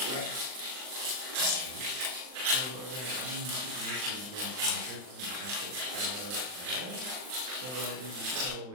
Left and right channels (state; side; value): late; left; 39 ms